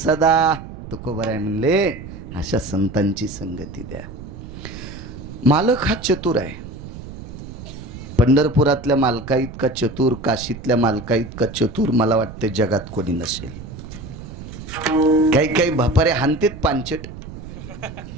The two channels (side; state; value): right; noise; rumble, 12 dB below the sound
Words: तुकोबा आहे म्हणले अशा संतांची संगती द्या. मालक हा चतुर आहे. पंढरपुरातल्या मालका इतका चतुर, काशीतल्या मालका इतका चतुर मला वाटते जगात कोणी नसेल. काही काही भापारे हानतेत पांचट,